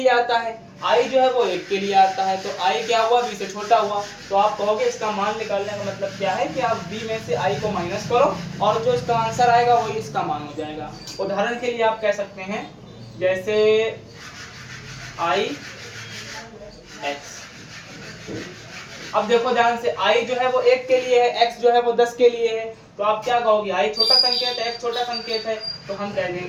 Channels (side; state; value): both; identical; correlation 1.00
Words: आता है, I जो है वो 1 के लिए आता है, तो I क्या हुआ, V से छोटा हुआ। तो आप कहोगे इसका मान निकालने का मतलब क्या है कि आप V में से I को माइनस करो और जो इसका आंसर आएगा वही इसका मान हो जाएगा। उदाहरण के लिए आप कह सकते हैं, जैसे I X, अब देखो ध्यान से, I जो है वो 1 के लिए है, X जो है वो 10 के लिए है, तो आप क्या कहोगे, I छोटा संकेत है, X छोटा संकेत है, तो हम कह